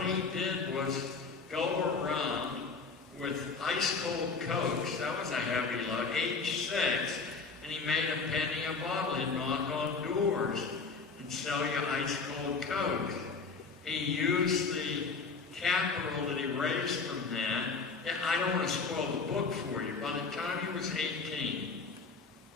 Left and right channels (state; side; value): quieter; right; 4.6 dB